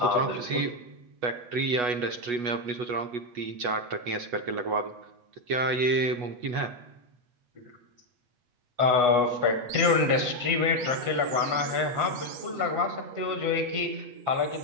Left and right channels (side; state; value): left; late; 8.2 ms